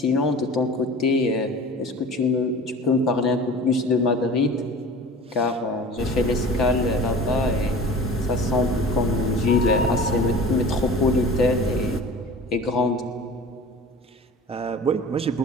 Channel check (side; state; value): both; normal; correlation 0.40